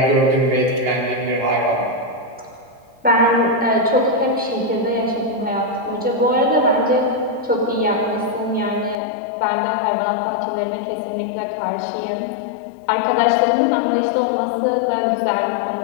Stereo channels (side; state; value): right; drops out; at 9.0 s